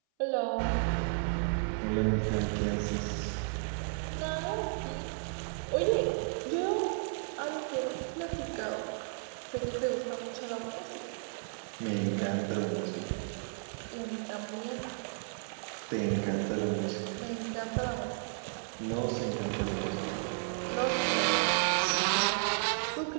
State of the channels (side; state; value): left; silent; 56 dB below the other